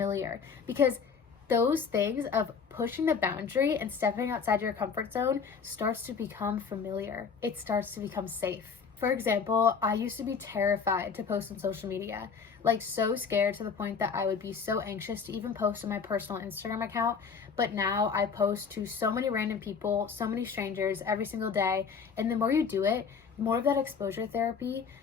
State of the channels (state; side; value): quieter; right; 6.0 dB